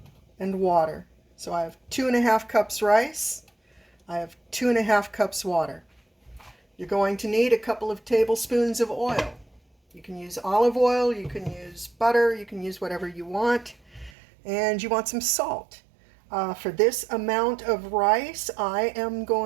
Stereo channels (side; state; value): left; drops out; at 14.1 s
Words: and water. So I have 2.5 cups rice. I have 2.5 cups water. You're going to need a couple of tablespoons of oil. You can use olive oil, you can use butter, you can use whatever you want. And you want some salt. For this amount of rice, I am